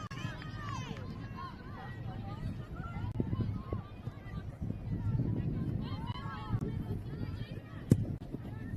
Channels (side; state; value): both; identical; correlation 1.00